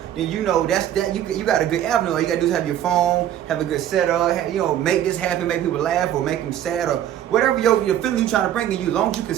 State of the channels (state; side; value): quieter; left; 11.1 dB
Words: then you know you got a good avenue. All you gotta do is have your phone, have a good setup, make this happen, make people laugh or make them sad or whatever your feeling you trying to bring in you. As long as you